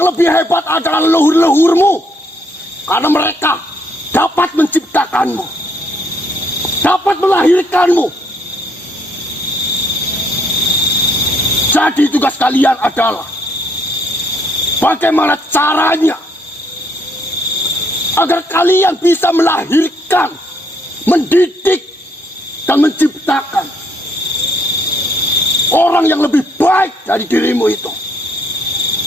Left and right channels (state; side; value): normal; both; correlation 0.69